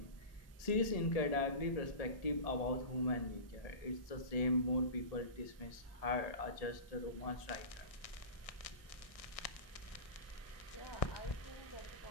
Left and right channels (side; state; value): right; late; 1.6 ms